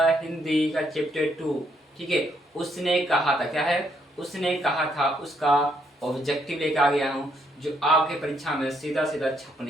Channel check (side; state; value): both; normal; correlation 0.73